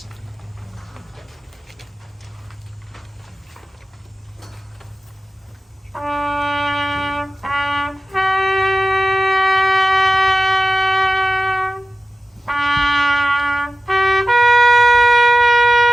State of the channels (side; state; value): both; normal; correlation 0.96